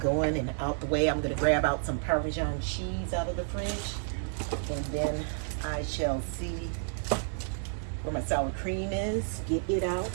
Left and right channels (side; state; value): left; silent; digital silence